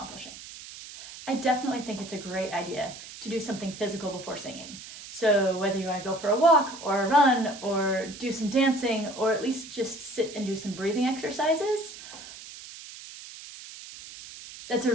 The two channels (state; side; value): noise; right; hiss, 14 dB below the sound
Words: I definitely think it's a great idea to do something physical before singing. So whether you want to go for a walk or a run or do some dancing or at least just sit and do some breathing exercises, that's